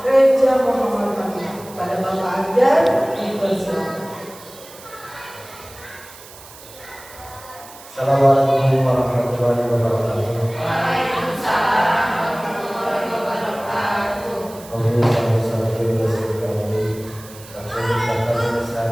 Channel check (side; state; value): right; noise; hiss, 19 dB below the sound